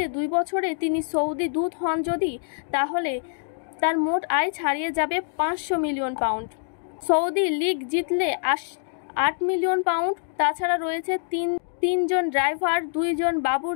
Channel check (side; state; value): right; silent; digital silence